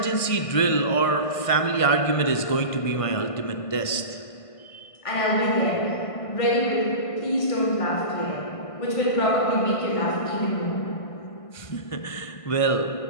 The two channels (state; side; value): late; right; 1.5 ms